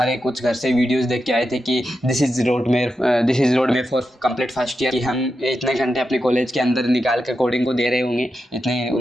कुछ घर से वीडियोज़ देख के आए थे कि दिस इज़ रोड में फॉर कंप्लीट फर्स्ट ईयर, कि हम इतने घंटे अपने कॉलेज के अंदर निकाल कर कोडिंग को दे रहे होंगे, इतने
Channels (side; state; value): both; normal; correlation 0.88